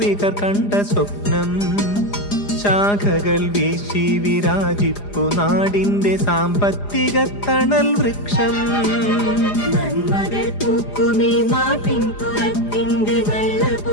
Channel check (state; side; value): late; right; 4.9 ms